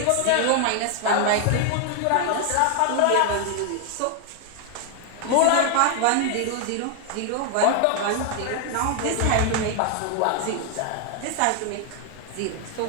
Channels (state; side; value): different; both; correlation 0.00